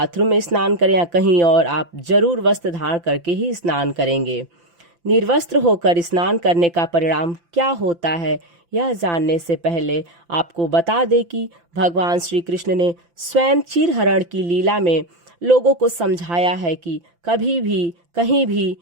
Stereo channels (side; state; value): left; late; 5.9 ms